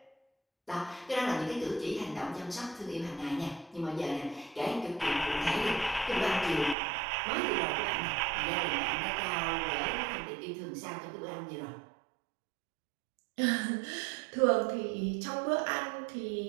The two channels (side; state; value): left; drops out; at 6.8 s